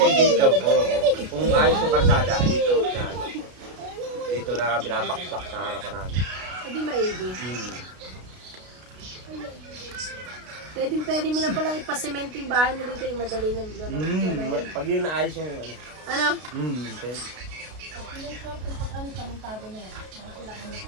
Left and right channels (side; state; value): left; late; 33 ms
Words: dito, kung ayos yung karsada, dito na, dito na binabaksak sa harapan namin. Hindi maigi. Hmm. Pwede mo na palang ipasemento yung bahay mo dito, yung madali ng gano'n. Pag yun naayos yung ano. Ano? Pwede.